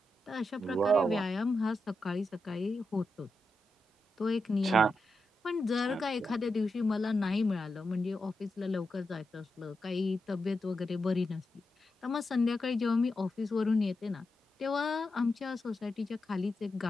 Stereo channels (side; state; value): both; normal; correlation 0.87